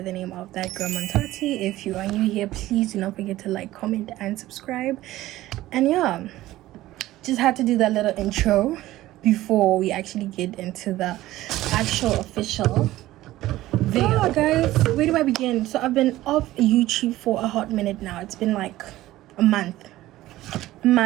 the name of that girl Montati. If you are new here, please do not forget to like, comment and subscribe. And yeah, just had to do that little intro before we actually get into the actual official video. Oh, guys, where do I begin? So I've been off YouTube for a hot minute now. It's been like a month,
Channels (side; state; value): left; quieter; 15.9 dB